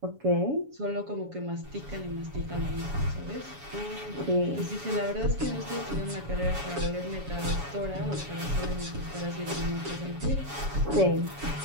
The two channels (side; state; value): left; late; 7.1 ms